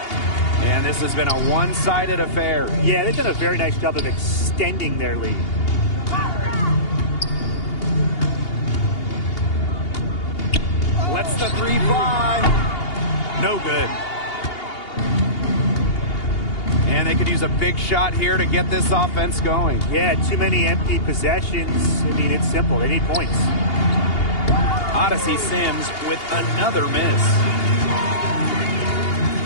And this has been a one-sided affair. Yeah, they've done a very nice job of extending their lead. Lets the 3 fly. No good. And they could use a big shot here to get this offense going. Yeah, too many empty possessions. I mean, it's simple. They need points. Odyssey Sims with another miss.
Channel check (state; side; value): late; right; 2.8 ms